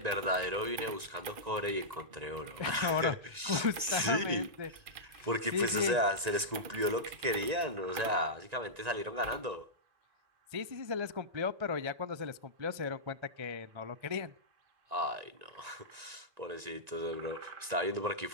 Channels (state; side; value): late; left; 1.9 ms